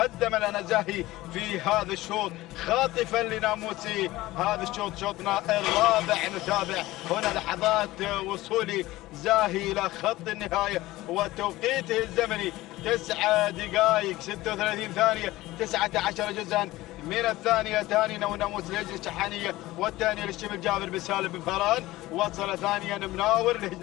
لنا زاهي في هذا الشوط خاطفا لناموسي. هذا الشوط شوطنا الرابع. نتابع هنا لحظات وصول زاهي إلى خط النهاية وتوقيته الزمني 9 دقائق 36 ثانية 19 جزءا من الثانية. ثاني ناموس لهجن الشحانية والثانية للشبل جابر بن سالم بن فاران. وصل ثانيا مناور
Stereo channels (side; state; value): right; quieter; 17.9 dB